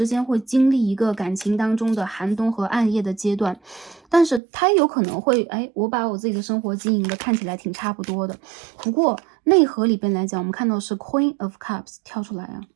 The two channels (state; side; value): drops out; left; at 4.4 s